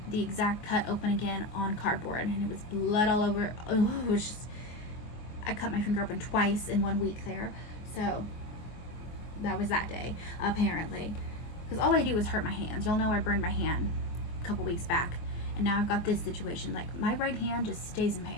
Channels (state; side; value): late; right; 24 ms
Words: the exact cut open again on cardboard, and it was blood all over. Oh, it was just, I cut my finger open twice in 1 week there. So that was that day, apparently. Because all I do is hurt my hands. You'll know I burned my hand a couple weeks back, and now I've got this situation. Like, my right hand just stays in